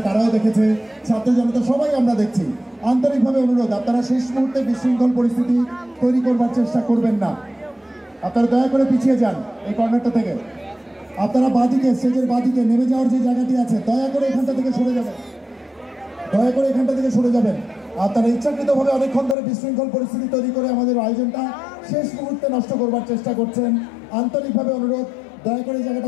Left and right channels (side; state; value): right; drops out; at 19.4 s